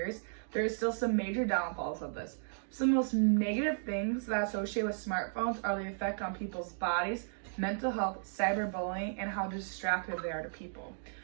there is still some major downfalls of this. Some of the most negative things that associate with smartphones are the effect on people's bodies, mental health, cyberbullying, and how distracted they are to people.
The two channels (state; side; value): silent; left; digital silence